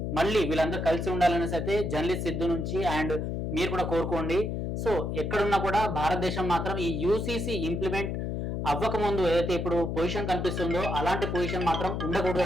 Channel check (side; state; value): left; noise; hum, 2 dB below the sound